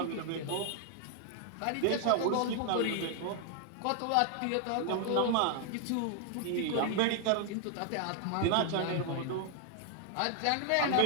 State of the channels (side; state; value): both; different; correlation 0.00